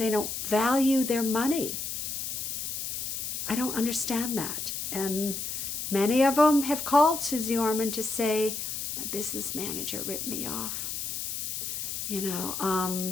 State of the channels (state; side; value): noise; left; hiss, 4 dB below the sound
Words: don't value their money. I don't understand that. And many of them have called Suze Orman to say, my business manager ripped me off. You